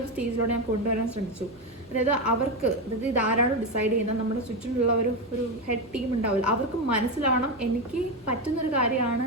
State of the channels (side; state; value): both; normal; correlation 0.12